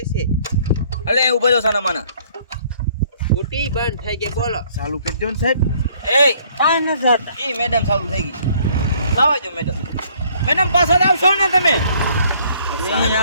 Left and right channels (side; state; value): both; inverted; correlation -0.61